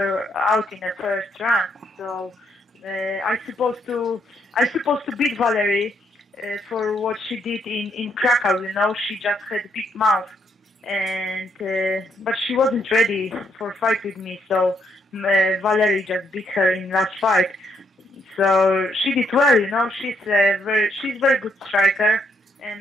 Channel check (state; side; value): normal; both; correlation 0.74